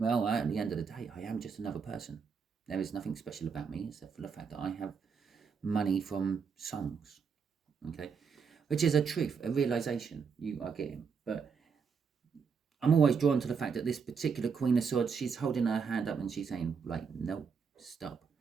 at the end of the day, I am just another person. There is nothing special about me except for the fact that I have money from songs. Okay, which is a truth, a realization you are getting. But I'm always drawn to the fact that this particular Queen of Swords, she's holding her hand up and she's saying, like, no, stop.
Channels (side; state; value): left; quieter; 5.9 dB